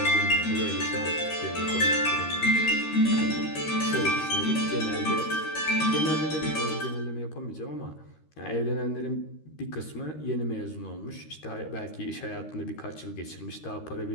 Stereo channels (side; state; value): right; late; 13 ms